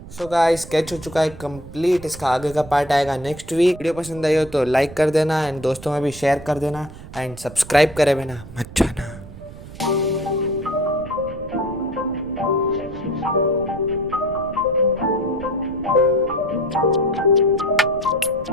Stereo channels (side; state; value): right; noise; rumble, 16 dB below the sound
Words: So guys sketch हो चुका है कंप्लीट। इसका आगे का पार्ट आएगा नेक्स्ट वीक। वीडियो पसंद आई हो तो लाइक कर देना एंड दोस्तों में भी शेयर कर देना एंड सब्सक्राइब करे बिना मत जाना।